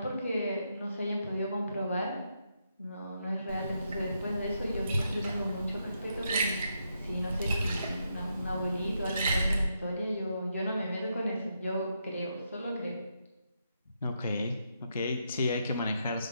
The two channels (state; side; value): inverted; both; correlation -0.81